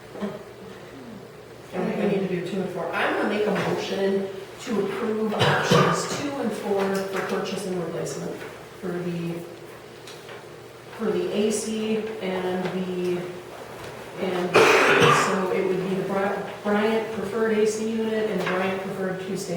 I think we need to do 2 and 4. I'm going to make a motion to approve options 2 and 4 for purchase and replacement for the AC and so it would be the Bryant preferred AC unit and Bryant preferred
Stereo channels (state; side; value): identical; both; correlation 1.00